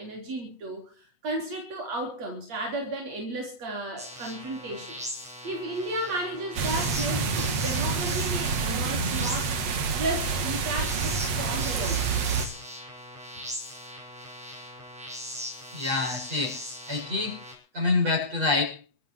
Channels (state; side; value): late; left; 8.2 ms